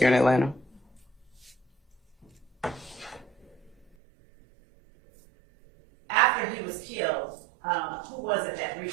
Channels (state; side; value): drops out; left; at 4.0 s